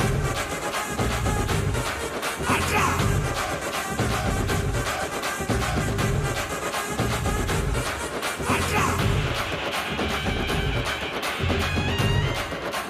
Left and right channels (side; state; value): both; identical; correlation 1.00